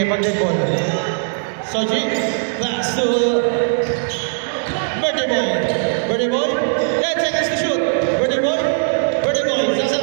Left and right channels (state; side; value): silent; left; digital silence